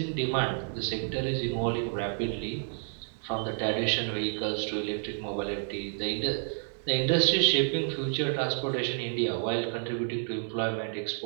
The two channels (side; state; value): left; silent; 58 dB below the other